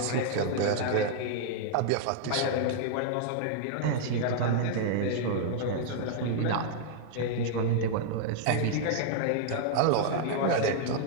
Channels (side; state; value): both; different; correlation -0.01